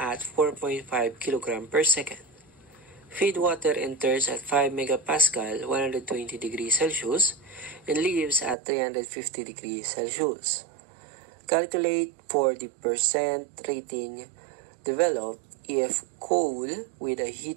4.5 kg per second. Feed water enters at 5 megapascal, 120 degrees Celsius, and leaves at 350 degrees Celsius. Calculate for the percent rating developed if coal with a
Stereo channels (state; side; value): drops out; left; at 8.6 s